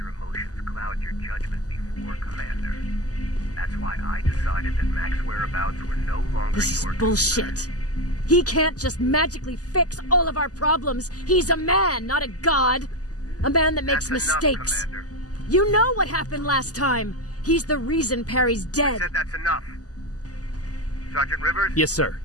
emotions cloud your judgment before, Commander. That's why I decided that Mac's whereabouts were no longer This your is bullshit. concern. He can't just magically fix all of our problems. He's a man, not a god. A man that makes That's mistakes. Enough, Commander. You know what happened last time. He's the reason Perry's dead. I said that's enough. Sergeant Rivers? Yes, sir.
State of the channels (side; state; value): right; late; 0.67 ms